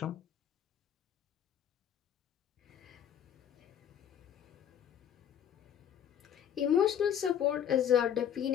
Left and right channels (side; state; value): right; quieter; 9.4 dB